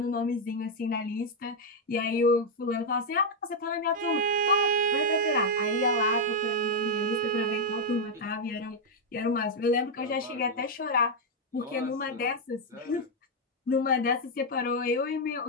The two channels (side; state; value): both; normal; correlation -0.01